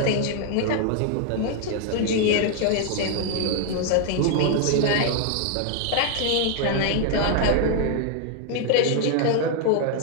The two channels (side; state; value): both; different; correlation 0.00